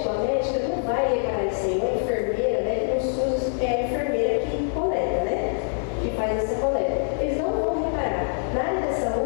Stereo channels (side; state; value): right; silent; digital silence